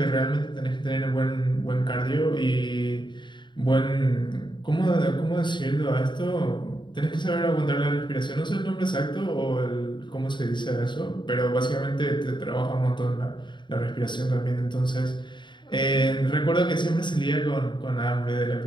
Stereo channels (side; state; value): right; late; 0.22 ms